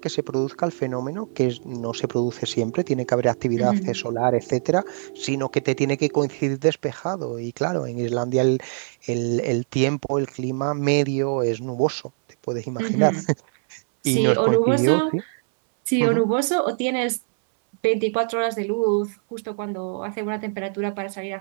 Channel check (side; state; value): left; silent; 63 dB below the other